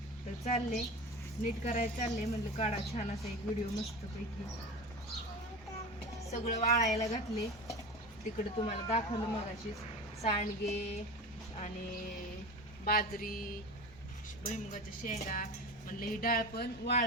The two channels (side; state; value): both; normal; correlation 0.30